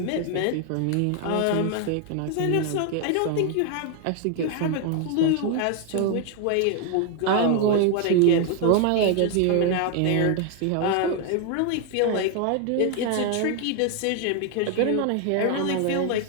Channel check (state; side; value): different; both; correlation 0.00